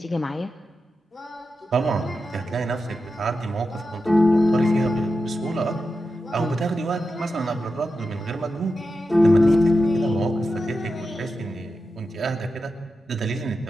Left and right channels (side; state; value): both; normal; correlation 0.90